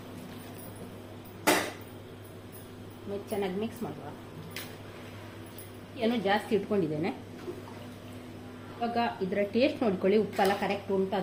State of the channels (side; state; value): both; identical; correlation 1.00